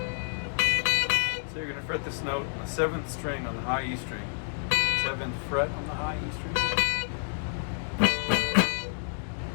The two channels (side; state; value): right; silent; digital silence